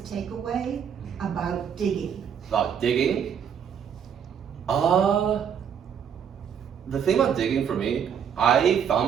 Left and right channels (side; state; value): left; quieter; 8.0 dB